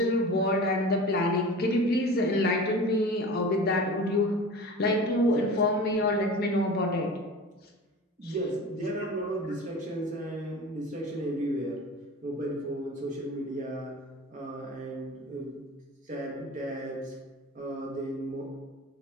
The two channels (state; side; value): normal; both; correlation 0.36